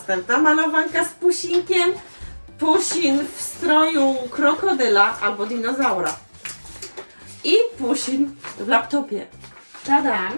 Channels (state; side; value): inverted; both; correlation -1.00